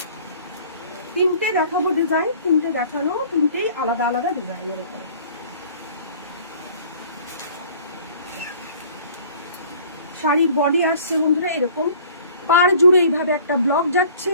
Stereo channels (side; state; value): both; inverted; correlation -0.50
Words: তিনটে দেখাবো ডিজাইন, তিনটে দেখানো, তিনটেই আলাদা আলাদা ডিজাইনের উপরে। শাড়ির বডি আসছে বন্ধুরা এরকম, পাড় জুড়ে এইভাবে একটা ব্লক যাচ্ছে